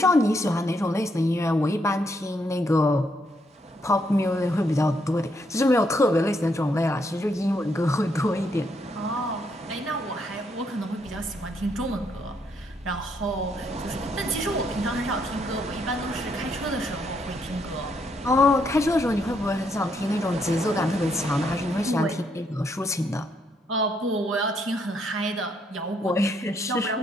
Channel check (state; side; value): normal; both; correlation 0.75